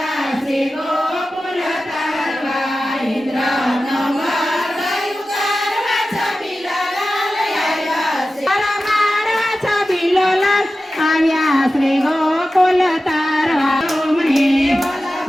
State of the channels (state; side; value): normal; both; correlation 0.94